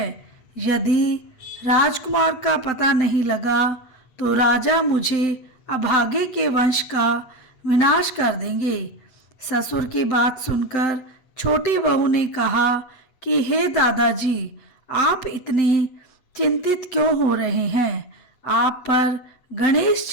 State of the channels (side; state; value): right; late; 8.2 ms